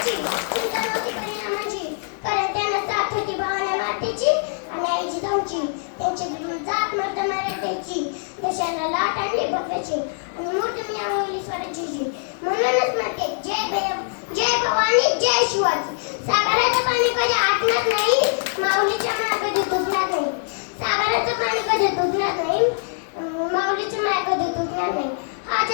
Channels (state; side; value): silent; right; 63 dB below the other